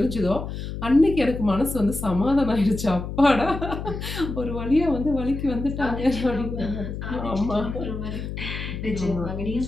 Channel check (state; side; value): noise; left; hum, 7 dB below the sound